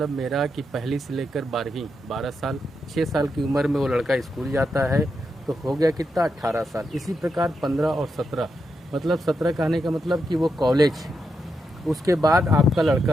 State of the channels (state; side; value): normal; both; correlation 0.84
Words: मेरा कि पहली से लेकर 12वीं 12 साल, 6 साल की उम्र में वो लड़का स्कूल जाता है तो हो गया कितना, 18 साल। इसी प्रकार 15 और 17, मतलब 17 कहने का मतलब कि वो कॉलेज। उसके बाद आपका